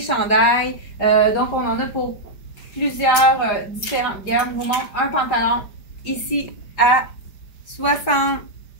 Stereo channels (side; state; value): right; late; 5.0 ms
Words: Donc, on en a pour plusieurs différentes gammes. Je vous montre un pantalon ici à 60%